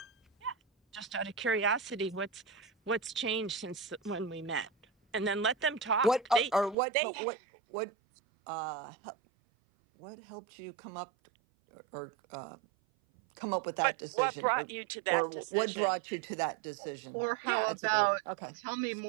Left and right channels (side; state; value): left; drops out; at 6.8 s